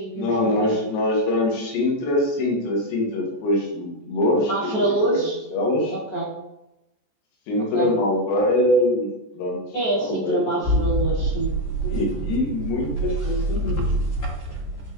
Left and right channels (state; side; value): late; right; 14 ms